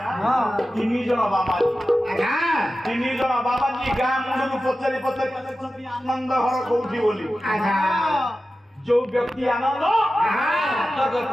3 ଜଣ ବାବାଜୀ ଗାଁ ମୁଣ୍ଡରୁ ପଚାରି ଆନନ୍ଦ ଘର କୋଉଠି ବୋଲି। ଯୋଉ ବ୍ୟକ୍ତି ଆନନ୍ଦ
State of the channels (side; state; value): both; normal; correlation 0.94